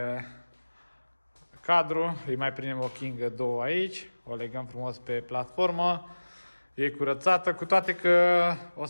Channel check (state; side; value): inverted; both; correlation -1.00